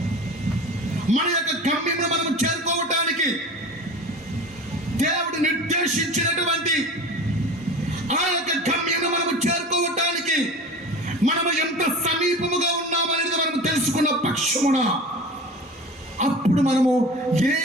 సంవత్సరమున అప్పుడు మనము ఏ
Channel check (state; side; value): normal; both; correlation 0.36